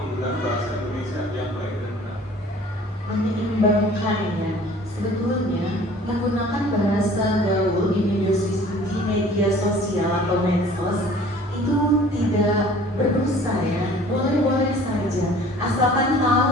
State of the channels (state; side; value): normal; both; correlation 0.50